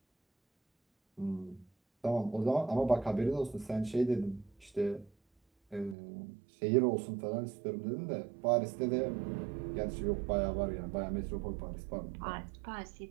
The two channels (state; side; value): drops out; left; at 6.0 s